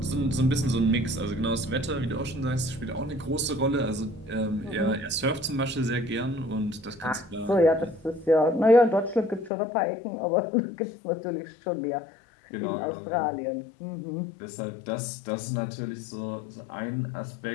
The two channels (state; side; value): drops out; right; at 9.5 s